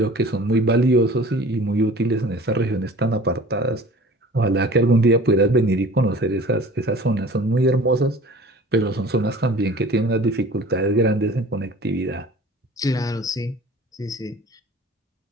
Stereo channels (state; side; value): normal; both; correlation 0.44